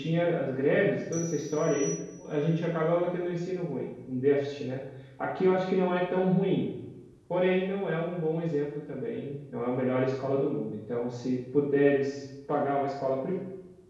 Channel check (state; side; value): identical; both; correlation 1.00